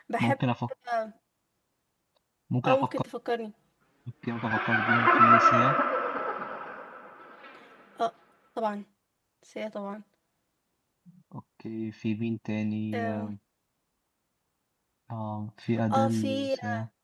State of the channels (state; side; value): identical; both; correlation 1.00